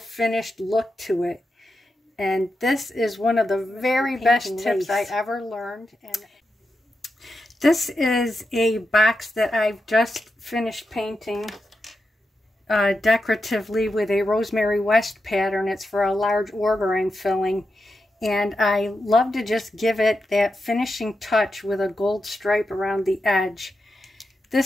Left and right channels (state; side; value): normal; both; correlation 0.88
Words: look to it. And this is one of the very best tips I ever learned. And this is a box that I've just finished painting decoratively with a Rosemary West pattern. It's for a large order I'm filling, and I love to just give it that finishing touch with a gold stripe around the edge.